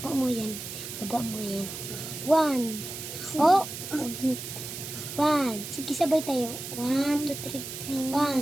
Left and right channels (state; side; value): noise; right; hiss, 8 dB below the sound